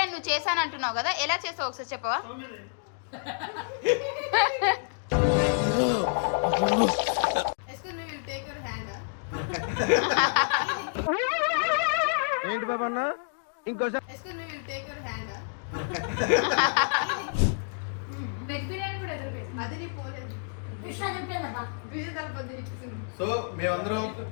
నువ్వు చేశాను అంటున్నావు కదా, ఎలా చేసావు ఒకసారి చెప్పవా? ఏంటి బాబా అన్న ఇంకోసారి సో మేమందరం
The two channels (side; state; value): right; silent; digital silence